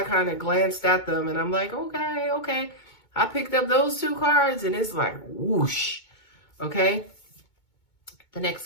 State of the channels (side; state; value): right; late; 2.2 ms